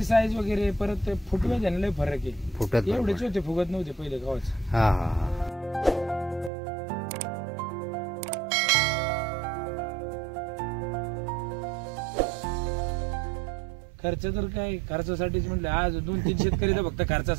साईज वगैरे परत फुटवे त्याने लय फरक आहे. फुटत एवढेच होते फुगत नव्हते पहिले गावाच. हा हा. खर्च तर काय खर्चासाठीच म्हणलं. आज 2-3 शेतकरी तर फक्त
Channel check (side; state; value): left; drops out; at 6.5 s